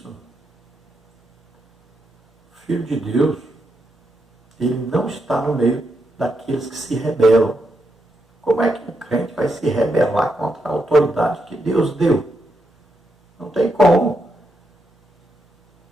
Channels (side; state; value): both; normal; correlation 0.82